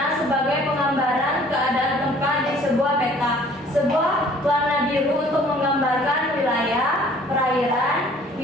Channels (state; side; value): normal; both; correlation 0.55